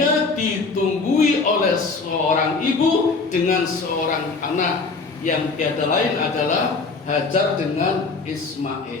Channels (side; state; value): right; quieter; 4.1 dB